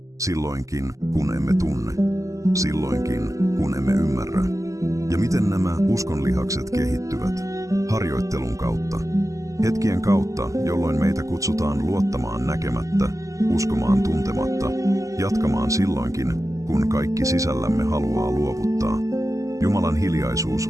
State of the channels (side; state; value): left; late; 0.16 ms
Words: silloinkin, kun emme tunne, silloinkin, kun emme ymmärrä. Ja miten nämä uskonlihakset kehittyvät? Harjoittelun kautta. Hetkien kautta, jolloin meitä kutsutaan luottamaan näkemättä, uskomaan tuntematta, jatkamaan silloinkin, kun kaikki sisällämme haluaa luovuttaa. Jumalan hiljaisuus